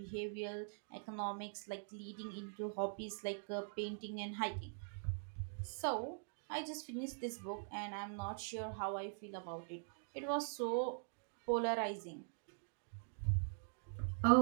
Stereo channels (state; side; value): silent; left; digital silence